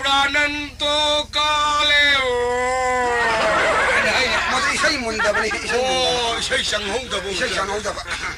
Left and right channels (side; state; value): both; identical; correlation 1.00